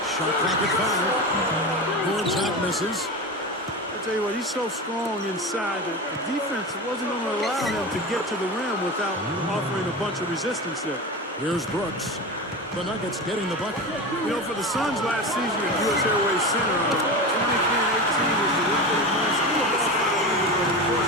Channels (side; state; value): both; normal; correlation 0.25